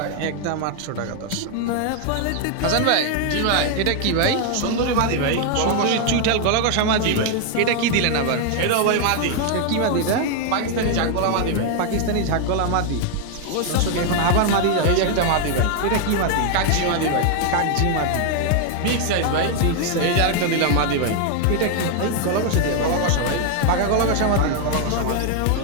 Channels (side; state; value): both; different; correlation 0.00